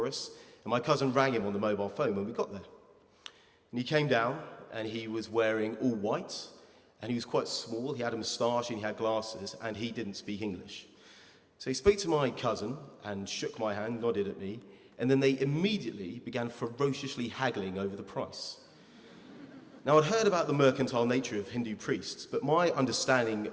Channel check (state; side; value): identical; both; correlation 1.00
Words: us, and my cousin rang him on the mobile phone when we got there. And he came down, and he was wearing all white, and he was quite small. He had a moustache, and he had glasses, and he didn't speak English. So he spoke to my cousin and shook my hand, nodded at me, and then they immediately began ferociously haggling over the price. Now, I'd heard about the mercantile nature of Hindu priests, but my understanding